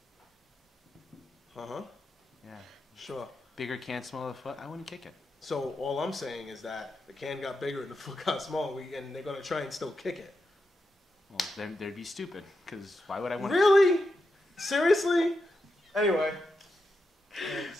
Uh-huh. Yeah. Sure. Bigger can, smaller foot. I wouldn't kick it. So all I'm saying is that the can got bigger and the foot got smaller, and they're gonna try and still kick it. Well, then they'd be stupid. Because why would I want? Really? Seriously? Anyway. What do you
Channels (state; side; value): normal; both; correlation 0.87